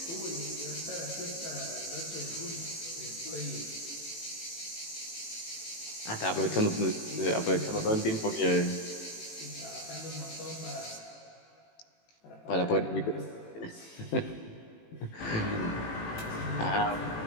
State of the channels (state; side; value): late; right; 18 ms